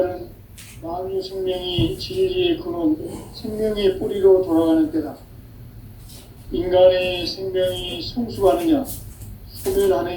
만유 생명이 진리의 근원, 생명의 뿌리로 돌아가는 때다. 인간의 생명이 성숙하느냐,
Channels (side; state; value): both; identical; correlation 1.00